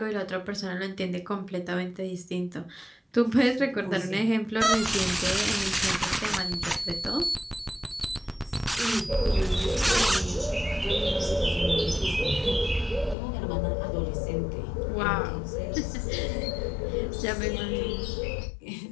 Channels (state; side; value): drops out; right; at 13.2 s